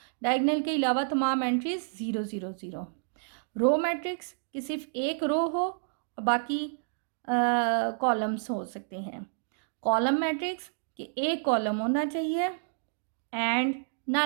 डायगोनल के अलावा तमाम एंट्रीज 0 0 0। रो मैट्रिक्स कि सिर्फ एक रो हो और बाकी कॉलम्स हो सकते हैं। कॉलम मैट्रिक्स कि एक कॉलम होना चाहिए, एंड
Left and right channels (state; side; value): silent; left; digital silence